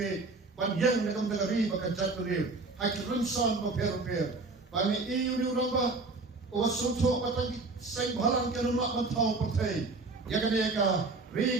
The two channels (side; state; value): left; quieter; 3.6 dB